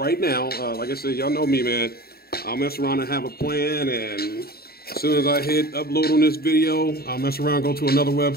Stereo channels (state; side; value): late; right; 0.45 ms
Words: now. Like I said, y'all know me, man. I'll mess around and have a plan, and as soon as I hit upload on this video, I'll mess around, go to another